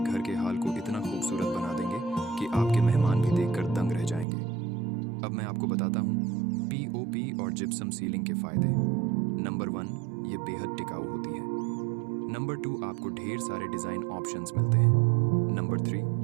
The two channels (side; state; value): left; drops out; at 4.2 s